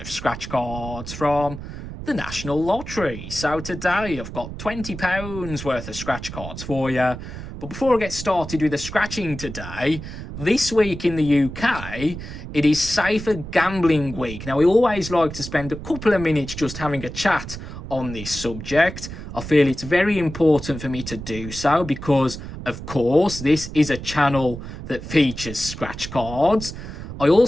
Scratch Cards from the National Lottery. So today I've got £20 worth of scratch cards for you. But before I get started with the scratching today, this week in the UK, it is Safer Gambling Week. Now, we always like to spend a couple of minutes just having a chat on this subject. I feel it's very important for me to do so because, of course, this is a channel that features scratch cards. I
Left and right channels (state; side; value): noise; right; rumble, 10 dB below the sound